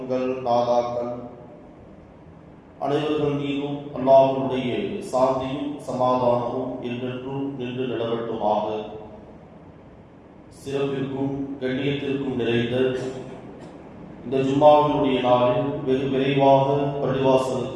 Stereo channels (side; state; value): both; identical; correlation 1.00